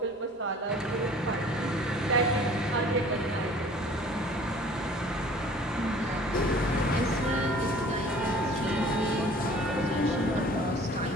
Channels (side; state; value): both; normal; correlation 0.49